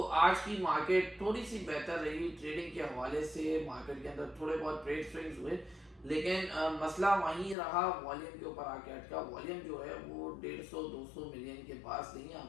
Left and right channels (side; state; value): right; drops out; at 7.6 s